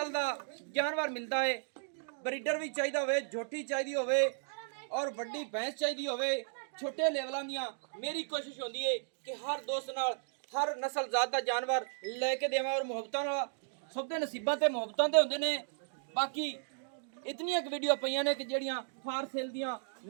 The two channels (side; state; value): left; silent; digital silence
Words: दा जानवर मिलता है। ब्रीडर भी चाहिए होवे, झोटी चाहिए होवे और वड्डी भैंस चाहिए होवे, छोटे लेवलों दियां। मेरी कोशिश होती है कि हर दोस्त नाल हर नस्ल जात दा जानवर लेके देवां और मुहब्बतां नाल सबदे नसीबां ते मुहब्बतां दे हुंदे ने। बाकी इतनियां वीडियो पईयां ने कि जेड़ियां फार सेल दियां